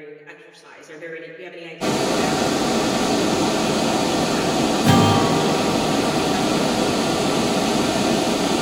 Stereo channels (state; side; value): identical; both; correlation 1.00